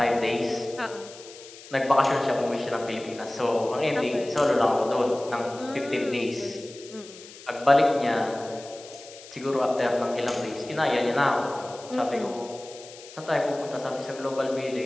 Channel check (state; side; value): noise; left; hiss, 18 dB below the sound